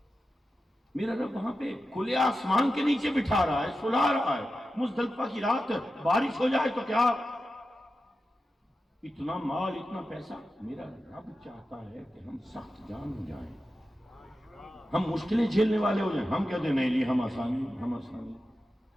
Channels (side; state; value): both; normal; correlation 0.91